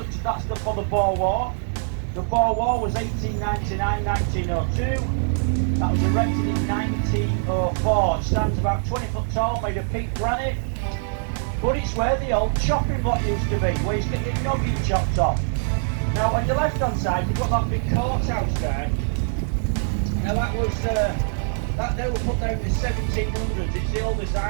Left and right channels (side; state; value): left; silent; digital silence